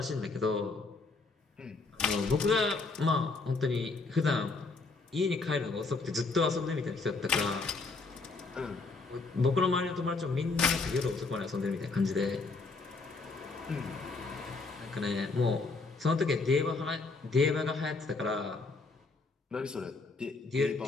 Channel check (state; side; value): quieter; right; 3.8 dB